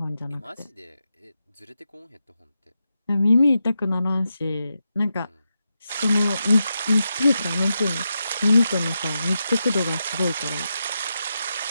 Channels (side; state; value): both; inverted; correlation -0.87